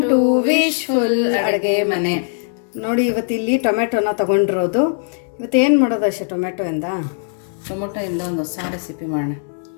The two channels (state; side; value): silent; right; 66 dB below the other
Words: to wishful ಅಡುಗೆ ಮನೆ. ನೋಡಿ ಇವತ್ತಿಲ್ಲಿ ಟೊಮೆಟೊನ ತಗೊಂಡಿರೋದು. ಇವತ್ತೇನು ಮಾಡೋದು ಅಷ್ಟೇ ಟೊಮೆಟೊಯಿಂದ ಒಂದು ಹೊಸ ರೆಸಿಪಿ ಮಾಡೋಣ.